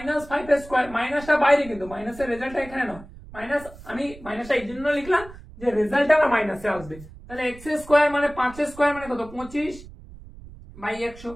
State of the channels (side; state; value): right; noise; rumble, 18 dB below the sound